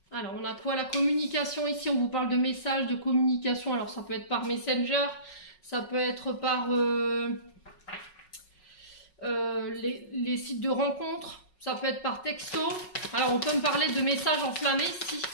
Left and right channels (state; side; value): late; right; 5.4 ms